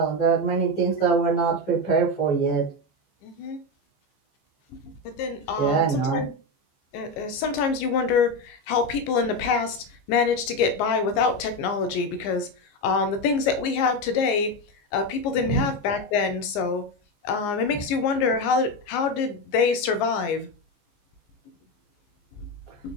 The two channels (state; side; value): late; right; 15 ms